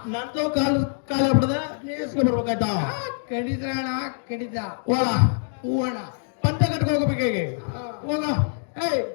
ನಂದು ಕಾಲ ಬಿಡದ ನೀಸ್ಕೊಂಡ್ ಬರ್ಬೇಕಾಯ್ತಾ? ಕಡಿದ ಅಣ್ಣ, ಕಡಿದ. ಹೋಗ ಹೂವಣ್ಣ. ಪಂಚ ಕಟ್ಕೊ ಹೋಗ್ಬೇಕು ಹೇಗೆ ಹೋಗ. ಏಯ್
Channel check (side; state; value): right; silent; digital silence